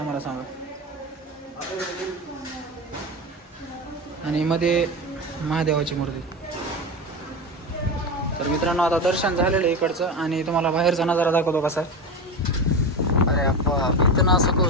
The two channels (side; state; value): both; normal; correlation 0.21